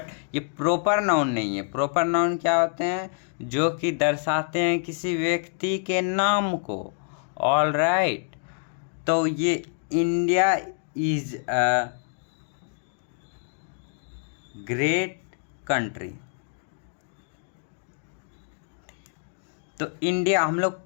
ये प्रॉपर नाउन नहीं है। प्रॉपर नाउन क्या होते हैं? जो कि दर्शाते हैं किसी व्यक्ति के नाम को। ऑल राइट, तो ये India is a great country. तो इंडिया हम लोग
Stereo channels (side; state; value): right; silent; digital silence